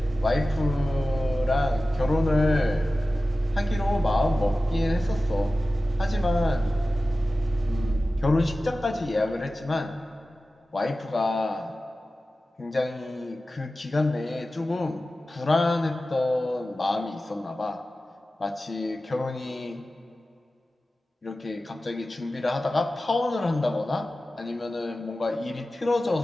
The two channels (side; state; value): both; normal; correlation 0.95